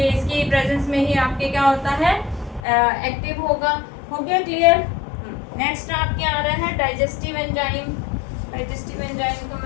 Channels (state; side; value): drops out; right; at 2.6 s